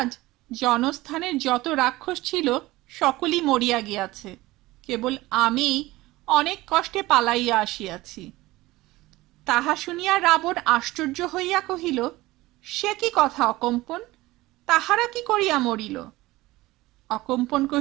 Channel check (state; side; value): quieter; left; 18.9 dB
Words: জনস্থানের যত রাক্ষস ছিল সকলই মরিয়া গিয়াছে, কেবল আমি অনেক কষ্টে পালাইয়া আসিয়াছি। তাহা শুনিয়া রাবণ আশ্চর্য হইয়া কহিল, সে কি কথা অকম্পন? তাহারা কি করিয়া মরিল? অকম্পন